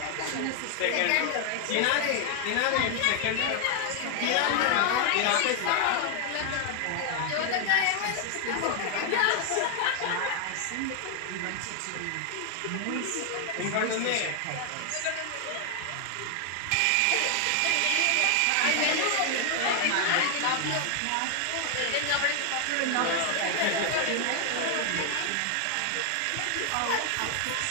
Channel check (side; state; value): both; different; correlation 0.00